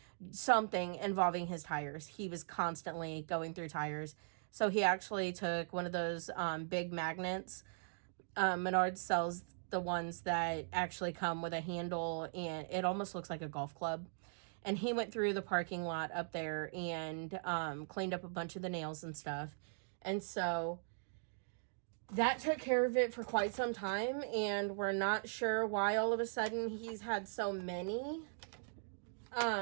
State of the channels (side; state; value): left; silent; digital silence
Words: something involving his tires. He was constantly going through tires. So he actually took one of those big magnets. Menards sells the ones that actually come with a handle, and it almost looks like a golf club. And he went through the parking lot up there and cleaned up a bunch of the nails and stuff. And so that took care of it for quite some time. And we're not sure why all of a sudden he's had so many